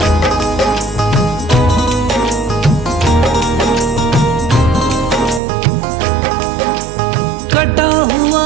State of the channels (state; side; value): drops out; left; at 5.4 s